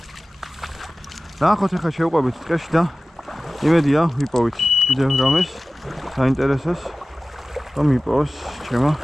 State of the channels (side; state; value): both; normal; correlation 0.96